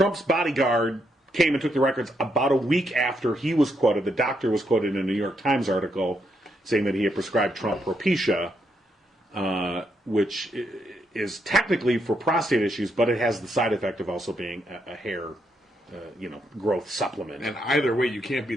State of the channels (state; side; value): normal; both; correlation 0.78